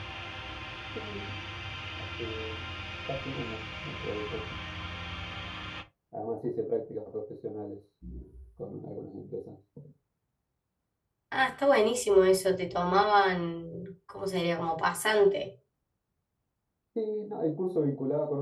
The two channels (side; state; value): both; identical; correlation 1.00